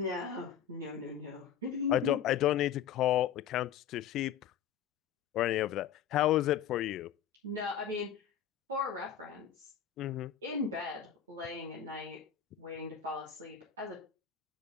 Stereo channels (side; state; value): right; quieter; 9.3 dB